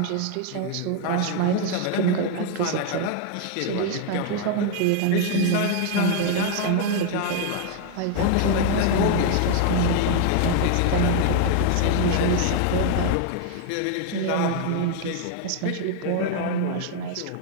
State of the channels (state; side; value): different; both; correlation 0.00